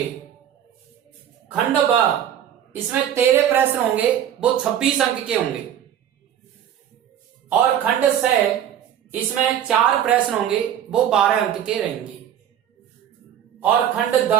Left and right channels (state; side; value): quieter; left; 10.1 dB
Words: खंड ब, इसमें 13 प्रश्न होंगे, वो 26 अंक के होंगे। और खंड स, इसमें 4 प्रश्न होंगे, वो 12 अंक के रहेंगे। और खंड द,